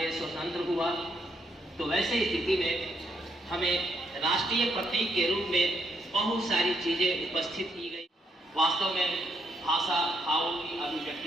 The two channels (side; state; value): both; normal; correlation 0.76